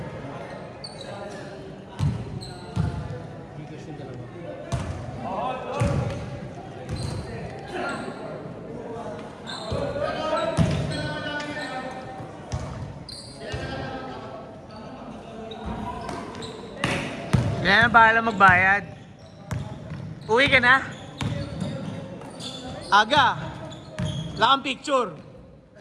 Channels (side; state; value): both; identical; correlation 1.00